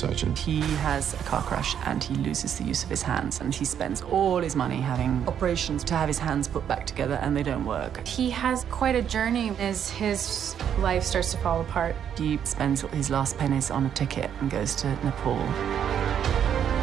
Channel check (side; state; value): left; quieter; 8.9 dB